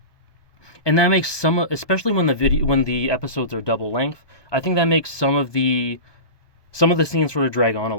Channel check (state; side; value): late; right; 1.2 ms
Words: and that makes especially when the episodes are double length, I think that makes some of the scenes sort of drag on a